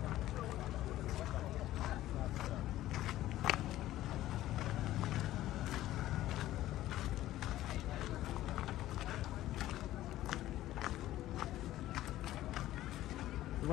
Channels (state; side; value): quieter; right; 14.6 dB